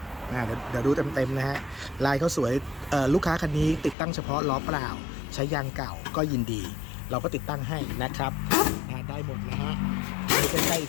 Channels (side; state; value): right; drops out; at 4.0 s